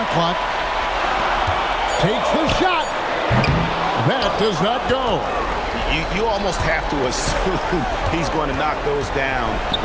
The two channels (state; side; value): identical; both; correlation 1.00